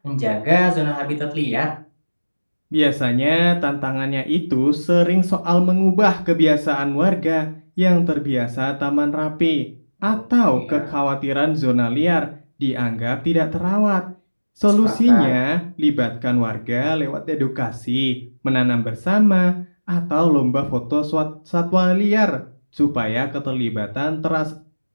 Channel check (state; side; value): inverted; both; correlation -1.00